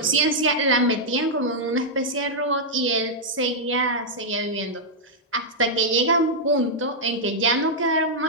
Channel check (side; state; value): both; normal; correlation -0.06